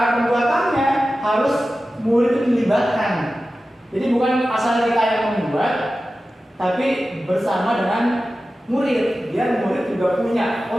pembuatannya harus murid itu dilibatkan. Jadi bukan asal kita yang membuat, tapi bersama dengan murid. Biar murid juga punya,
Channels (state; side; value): normal; both; correlation 0.94